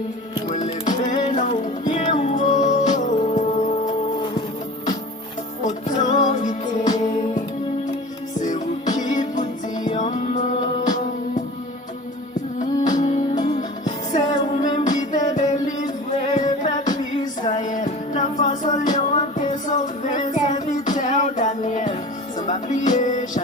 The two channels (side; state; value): both; normal; correlation 0.38